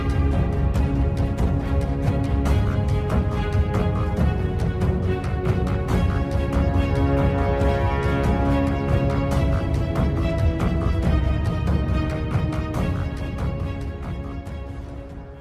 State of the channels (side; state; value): both; identical; correlation 1.00